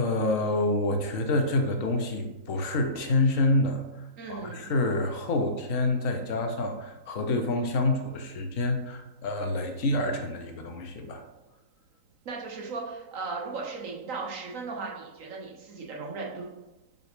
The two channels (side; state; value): left; late; 3.9 ms